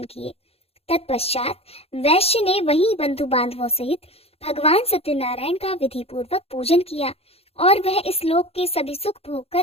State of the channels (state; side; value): late; right; 0.29 ms